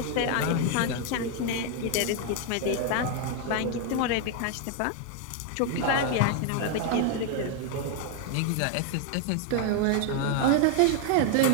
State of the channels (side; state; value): both; different; correlation 0.00